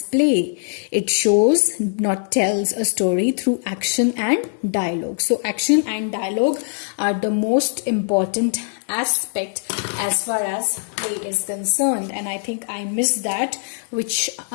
play. It shows, not tells a story through action and dialogue. So action and dialogue are the most important aspect as far as play is concerned. And I think I missed that, which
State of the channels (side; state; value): right; silent; 64 dB below the other